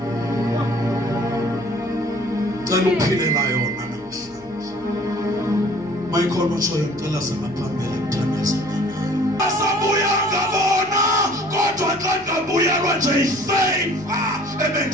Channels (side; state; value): left; noise; hum, 26 dB below the sound